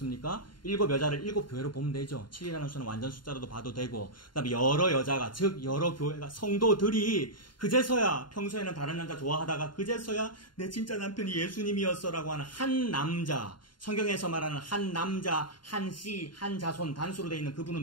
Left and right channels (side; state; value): right; late; 0.72 ms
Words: 7 여자를 7 교회로 보면 되죠. 7이라는 수는 완전 숫자로도 봐도 되고 그다음에 여러 여자가 즉 여러 교회가 성도들이 그제서야 평소에는 다른 남자 좋아하다가 그제서야 내 진짜 남편이 예수님이었어라고 하는 한 남자 성경에서 말하는 한 남자 한 씨 한 자손 단수로 되어 있는